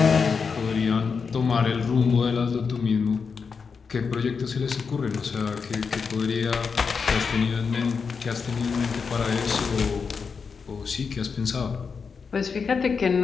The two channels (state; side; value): quieter; right; 5.5 dB